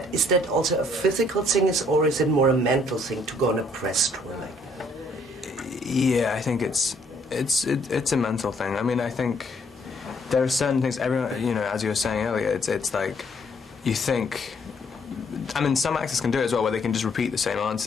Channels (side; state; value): both; normal; correlation 0.66